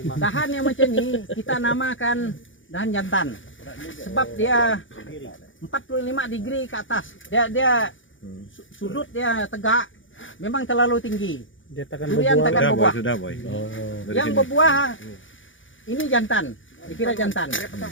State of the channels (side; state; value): right; late; 0.56 ms